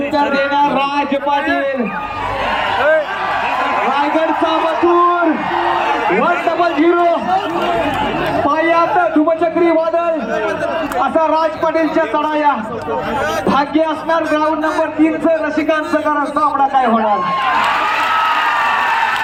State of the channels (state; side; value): identical; both; correlation 1.00